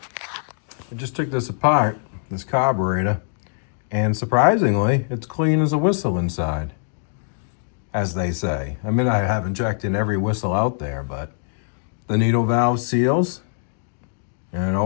I just took this apart, this carburetor, and surprisingly, it's clean as a whistle inside, as they say. I mean, I haven't checked in every whistle out there, but the needle valve seals, and it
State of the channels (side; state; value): right; silent; digital silence